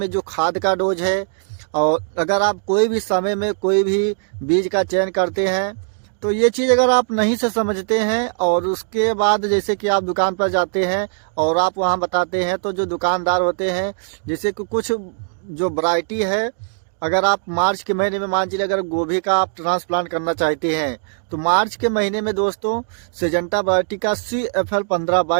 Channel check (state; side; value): silent; left; digital silence